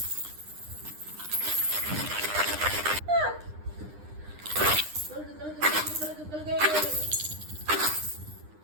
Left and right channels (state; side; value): late; left; 9.8 ms